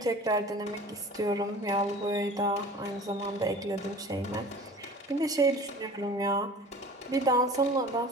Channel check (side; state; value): both; normal; correlation 0.42